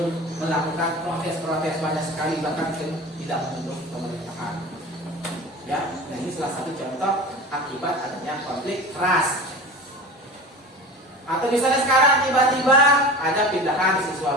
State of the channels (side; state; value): both; normal; correlation 0.34